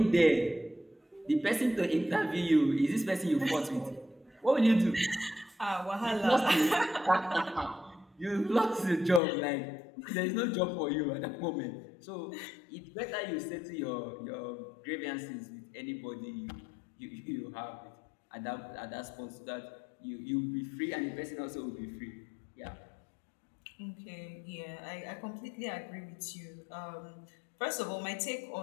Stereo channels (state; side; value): drops out; right; at 9.2 s